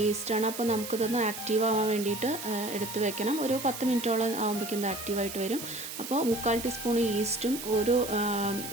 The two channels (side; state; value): right; noise; hiss, 9 dB below the sound